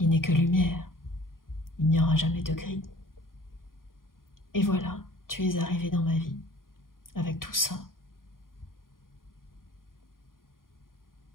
n'est que lumière, il n'y aura jamais de gris. Et voilà, tu es arrivé dans ma vie, avec tout ça.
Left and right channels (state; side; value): late; right; 0.91 ms